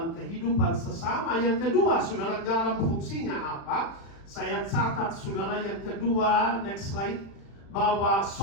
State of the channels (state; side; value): late; right; 36 ms